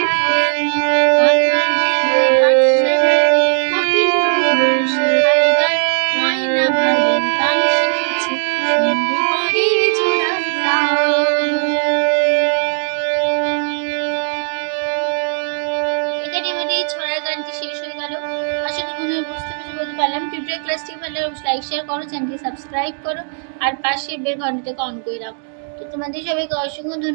কোকিল গুরু শেখায় গান ময়না ভালো গান শিখেছে শুনবে পরে জোড়ায় গান। এখানে আমাদের এই ছড়ার গানটি শেষ হয়ে গেল। আশা করি বন্ধুরা বুঝতে বলতে পারলাম। টিউটোরিয়াল ক্লাসটি ভালো লাগলে লাইক শেয়ার করো, চ্যানেলটি সাবস্ক্রাইব করো আর পাশে বেল ঘন্টাটাকে অন করে রাখো। তো তোমাদের সবাইকে অসংখ্য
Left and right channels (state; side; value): silent; left; digital silence